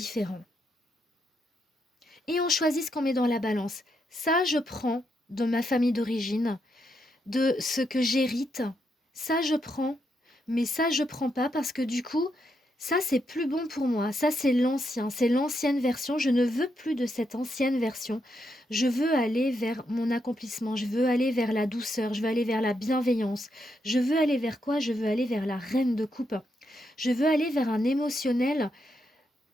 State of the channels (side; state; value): both; normal; correlation 0.81